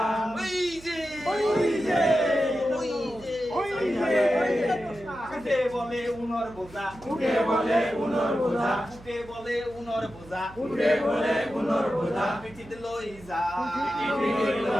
ওই যে ওই যে ওই যে ওই যে, উঠে বলে উনর বোঝা, উঠে বলে উনর বোঝা, উঠে বলে উনর বোঝা, উঠে বলে উনর বোঝা, পিঠিত লই যা, পিঠিত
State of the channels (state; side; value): noise; right; hum, 20 dB below the sound